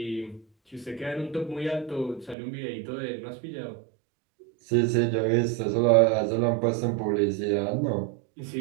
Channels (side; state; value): left; drops out; at 2.4 s